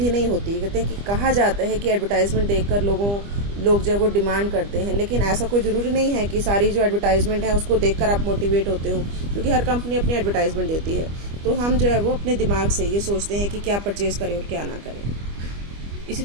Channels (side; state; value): left; late; 25 ms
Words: नहीं होती। कहते हैं कि कहा जाता है कि एडवर्टाइजमेंट देखकर लोग जो है वो डिमांड करते हैं, लेकिन ऐसा कोई ज़रूरी नहीं है कि सारी जो एडवर्टाइजमेंट है उसको देखकर आप मोटिवेट होते हो, क्योंकि हर कंपनी अपनी एडवर्टाइजमेंट देती है। तो हम जो है वो अपने दिमाग से ये सोचते हैं कि क्या परचेज़ करें और क्या ना करें। इसी